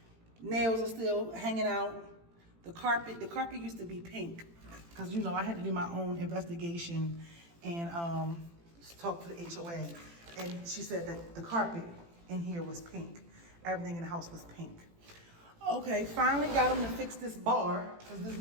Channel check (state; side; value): late; left; 18 ms